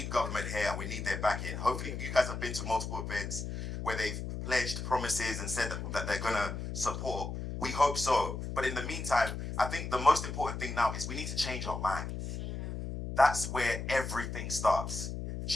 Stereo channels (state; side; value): noise; left; hum, 5 dB below the sound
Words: government here. We need their backing. Hopefully, you guys have been to multiple events where they've pledged promises and said that they're going to support. We hope so. But in the meantime, I think the most important thing now is we need to change our minds. That's where everything starts.